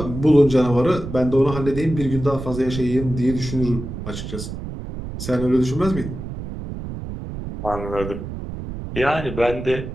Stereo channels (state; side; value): noise; right; rumble, 8 dB below the sound